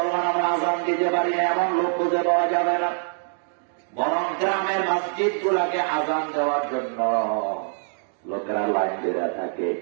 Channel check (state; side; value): silent; left; 59 dB below the other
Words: আমরা আজান দিতে পারি না এমন লোক খুঁজে পাওয়া যাবে না। বরং গ্রামের মসজিদ গুলাকে আজান দেওয়ার জন্য লোকেরা লাইন দেওয়া থাকে।